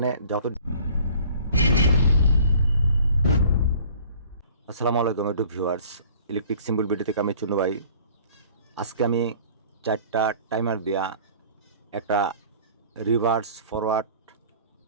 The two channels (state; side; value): inverted; both; correlation -0.49